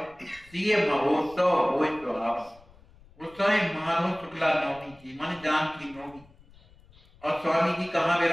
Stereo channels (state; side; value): noise; left; rumble, 26 dB below the sound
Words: सीए महोत्सव हुए सुहावन। उस समय माधव शुक्ला नवमी थी, मन जान की नवमी, और स्वामी जी कहाँ